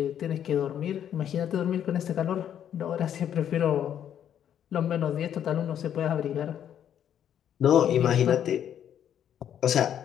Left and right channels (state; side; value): quieter; right; 9.7 dB